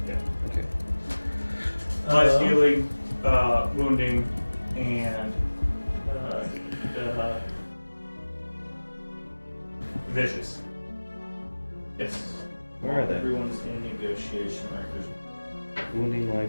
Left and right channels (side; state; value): both; inverted; correlation -1.00